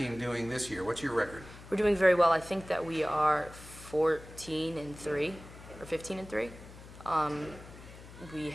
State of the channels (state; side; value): noise; left; hum, 17 dB below the sound